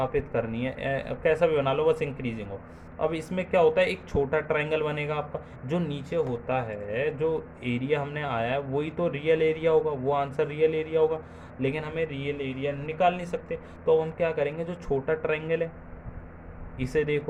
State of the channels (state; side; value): identical; both; correlation 1.00